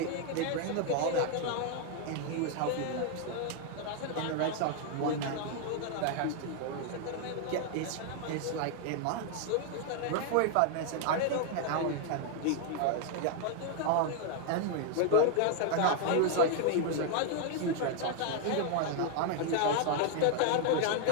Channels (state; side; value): different; both; correlation 0.00